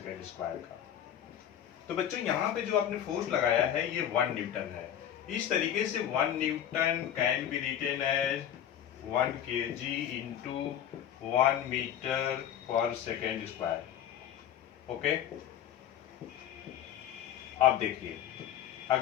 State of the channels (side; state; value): right; quieter; 10.3 dB